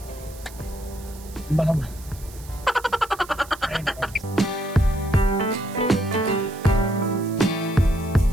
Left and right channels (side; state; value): right; noise; hiss, 20 dB below the sound